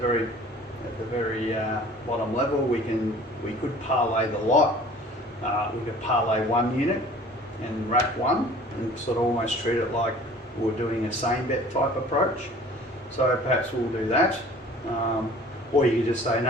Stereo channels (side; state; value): both; normal; correlation 0.48